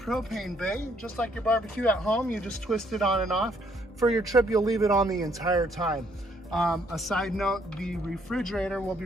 bay. Just like your barbecue at home, you just twist it on and off. For your trip, you'll leave it on the entire time. A side note, the refrigerator will be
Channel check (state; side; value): normal; both; correlation 0.68